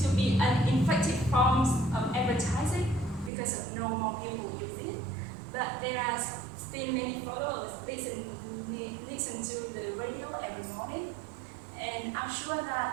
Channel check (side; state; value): left; drops out; at 3.3 s